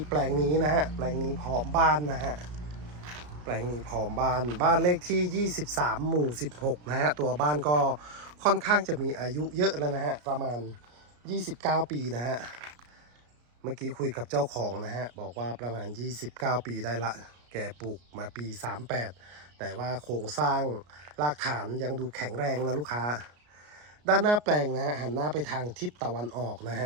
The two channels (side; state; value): left; late; 33 ms